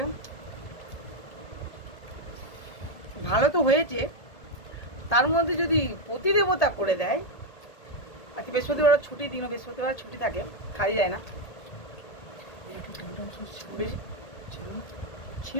ভালো তো হয়েছে, তার মধ্যে যদি প্রতিদেবতা করে দেয়। আজকে বৃহস্পতিবার ছুটি দিনও, বৃহস্পতিবার ছুটি থাকে, খাই যায় না।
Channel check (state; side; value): late; right; 1.8 ms